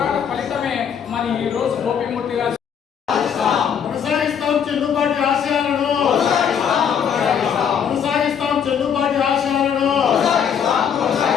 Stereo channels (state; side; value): quieter; right; 7.9 dB